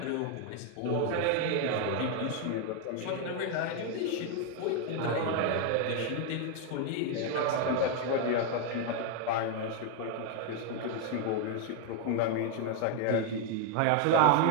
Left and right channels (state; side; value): different; both; correlation 0.01